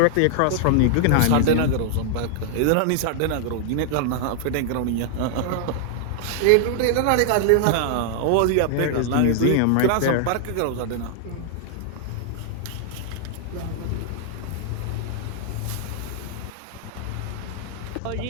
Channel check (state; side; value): different; both; correlation 0.00